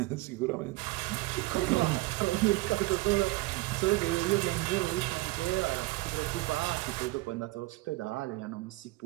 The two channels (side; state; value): left; quieter; 20.7 dB